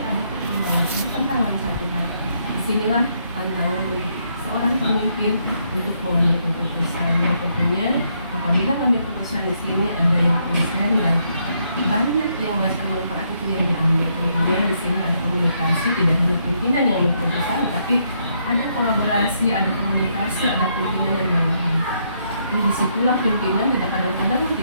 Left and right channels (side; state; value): both; inverted; correlation -0.74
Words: pertimbangan, bertentangan satu hal. Disinilah tantangan untuk seorang pemimpin untuk mengambil keputusan. Yang tentunya apabila mengambil keputusan di sini ada yang konsen dan banyak yang merasa manfaat itu yang diambil. Kemudian di sini ada komunikasi, tidak hanya pimpinan yang berkeputusan, tapi ada kolaborasi, ada komunikasi, ada pimpinan dan bawahan. Jadi disitulah pimpinan tidak kadang-kadang